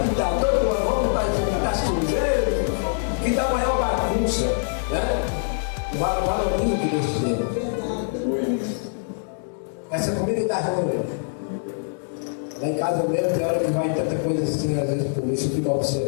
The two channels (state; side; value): silent; right; digital silence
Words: pintar todo ano, vamos pintar as cruzeiras, que dá maior bagunça, né? Valoriza o que Deus te deu. Essa comida está ruim. Lá em casa mesmo tem hora que vai tanta coisa assim, às vezes por isso eu fico